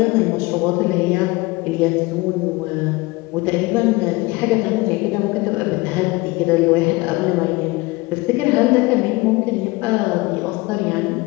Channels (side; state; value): right; quieter; 22.6 dB